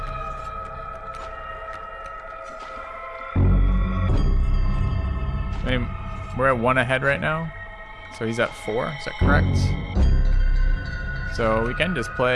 I mean, we're at 1 ahead right now, so he's at 4. Is that correct? So we can just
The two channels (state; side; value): identical; both; correlation 1.00